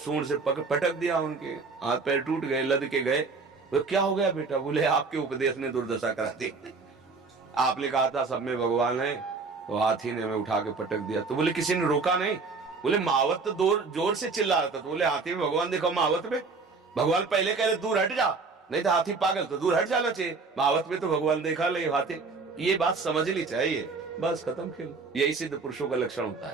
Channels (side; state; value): left; quieter; 4.3 dB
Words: सूंड से पटक दिया, उनके हाथ पैर टूट गए, लद के गए। तो क्या हो गया बेटा? बोले आपके उपदेश ने दुर्दशा करा दी, आपने कहा था सब में भगवान है, तो हाथी ने हमें उठा के पटक दिया। तो बोले किसी ने रोका नहीं? बोले महावत तो जोर से चिल्ला रहा था। तो बोले हाथी में भगवान देखो, महावत में भगवान पहले कह रहे दूर हट जा, नहीं तो हाथी पागल, तो दूर हट जाना चाहिए। महावत में तो भगवान देखा ले हाथी, ये बात समझनी चाहिए। बस खत्म खेल। यही सिद्ध पुरुषों का लक्षण होता